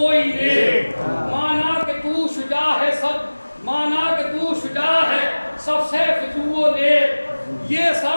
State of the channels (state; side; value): inverted; both; correlation -1.00